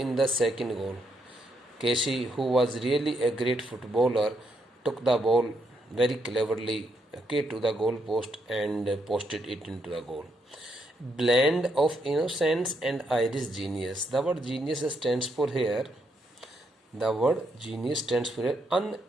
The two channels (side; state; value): both; normal; correlation 0.77